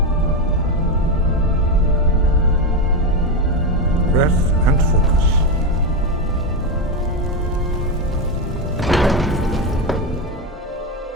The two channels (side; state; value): both; normal; correlation 0.11